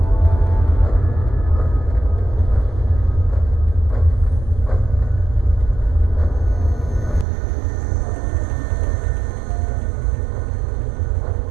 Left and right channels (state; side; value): drops out; left; at 7.2 s